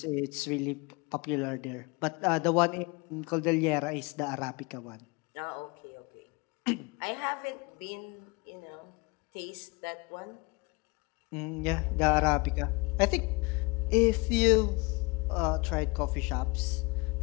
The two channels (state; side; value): quieter; right; 26.4 dB